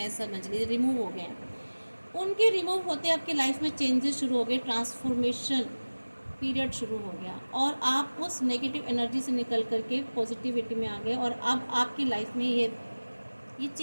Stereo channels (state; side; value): inverted; both; correlation -1.00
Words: समझ लीजिए रिमूव हो गए हैं। उनके रिमूव होते आपकी लाइफ में चेंजेस शुरू हो गए, ट्रांसफॉर्मेशन पीरियड शुरू हो गया, और आप उस नेगेटिव एनर्जी से निकल करके पॉजिटिविटी में आ गए, और अब आपकी लाइफ में ये